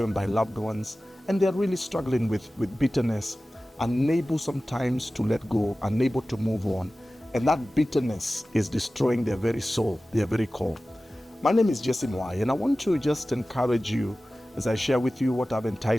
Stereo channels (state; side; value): normal; both; correlation 0.96